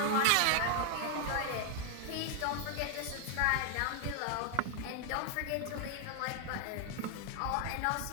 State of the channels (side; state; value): both; different; correlation 0.00